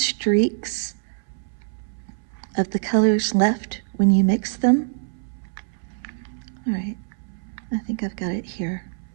of the colors left when you mix them. All right, I think I've got it here.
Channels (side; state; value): left; silent; 62 dB below the other